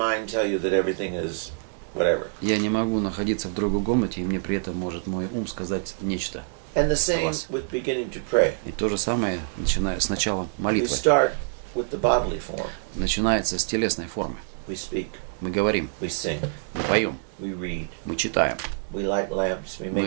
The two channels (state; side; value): silent; left; digital silence